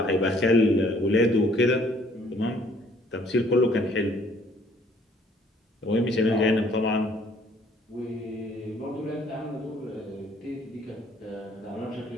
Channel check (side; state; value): both; normal; correlation 0.60